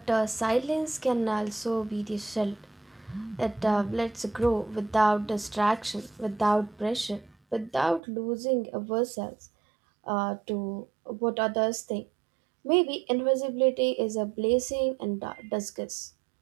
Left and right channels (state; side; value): drops out; left; at 8.0 s